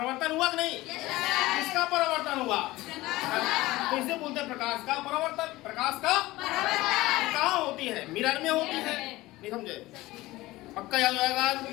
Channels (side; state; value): right; quieter; 18.6 dB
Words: हुआ कि नहीं? किसका परिवर्तन हुआ? तो इसे बोलते हैं प्रकाश का परिवर्तन। प्रकाश का कहाँ होती है? मिरर में होती है। नहीं समझे? पक्का याद आएगा?